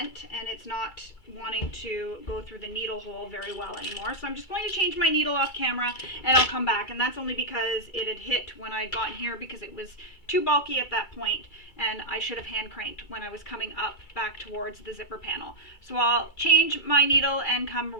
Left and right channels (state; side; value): late; right; 2.3 ms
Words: and it's not wanting to go through the needle hole very well anymore. So I'm just going to change my needle off camera and I'll come back. And that's only because it had hit when I got here because it was too bulky at that point and I should have hand cranked when I was coming up back towards the zipper panel. So I'll change my needle and come